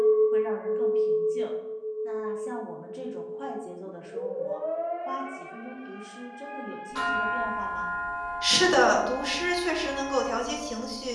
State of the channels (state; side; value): identical; both; correlation 1.00